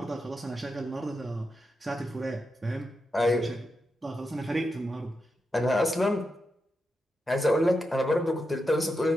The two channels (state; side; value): normal; both; correlation 0.87